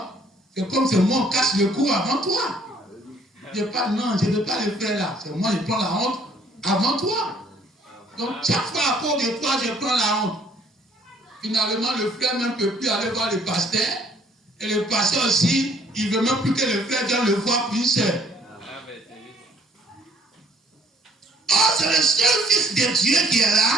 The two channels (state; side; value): normal; both; correlation 0.60